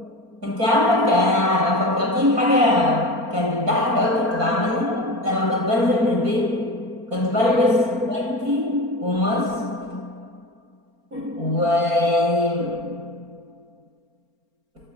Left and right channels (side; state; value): left; late; 4.3 ms